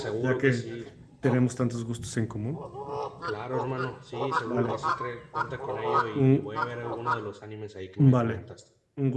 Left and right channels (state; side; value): identical; both; correlation 1.00